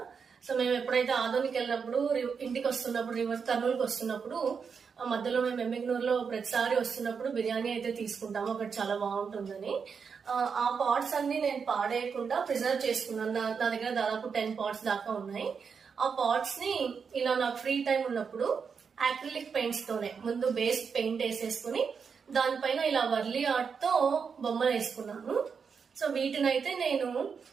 సో మేము ఎప్పుడైతే ఆదోనికి వెళ్ళినప్పుడు, ఇంటికి వస్తున్నప్పుడు, కర్నూలుకి వస్తున్నప్పుడు మధ్యలో మేము ఎమ్మిగ్నూరులో ప్రతిసారి వస్తున్నప్పుడు బిర్యానీ అయితే తీసుకుంటాము, అక్కడ చాలా బాగుంటుందని. ఆ పాట్స్ అన్ని నేను పాడేయకుండా ప్రిజర్వ్ చేసుకున్నాను. నా దగ్గర దాదాపు 10 pots దాకా ఉన్నాయి. ఆ పాట్స్ ని ఇలా నాకు ఫ్రీ టైం ఉన్నప్పుడు యాక్రిలిక్ పెయింట్స్ తోనే ముందు బేస్ పెయింట్ వేసేసుకుని దానిపైన ఇలా వర్లీ ఆర్ట్ తో బొమ్మలు వేసుకున్నాను. సో వీటిని అయితే నేను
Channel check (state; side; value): quieter; left; 6.0 dB